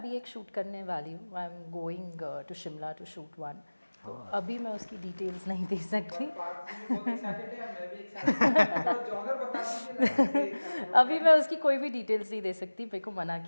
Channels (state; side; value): inverted; both; correlation -1.00